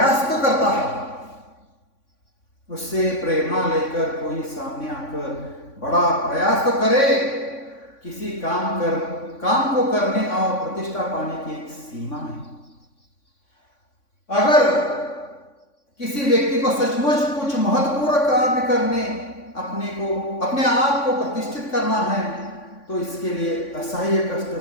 तो करता है। उससे प्रेरणा लेकर कोई सामने आकर बड़ा प्रयास तो करे। किसी काम को करने और प्रतिष्ठा पाने की एक सीमा है। अगर किसी व्यक्ति को सचमुच कुछ महत्वपूर्ण कार्य करने, अपने आप को प्रतिष्ठित करना है, तो इसके लिए असह्य कष्ट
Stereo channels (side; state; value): right; late; 3.5 ms